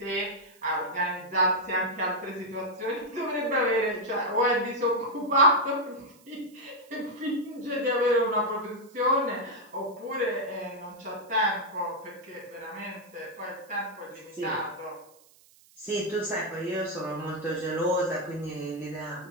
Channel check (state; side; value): noise; right; hiss, 28 dB below the sound